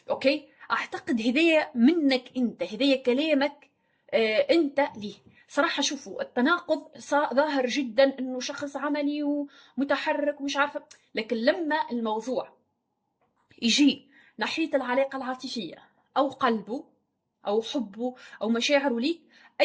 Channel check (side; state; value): both; identical; correlation 1.00